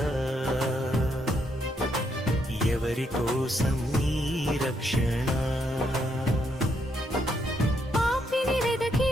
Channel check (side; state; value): both; normal; correlation 0.76